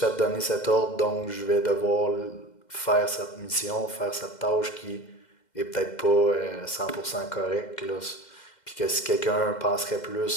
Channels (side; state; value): right; late; 2.1 ms